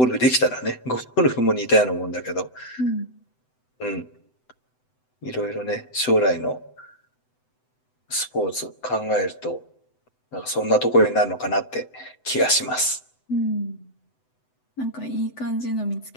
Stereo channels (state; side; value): late; right; 7.9 ms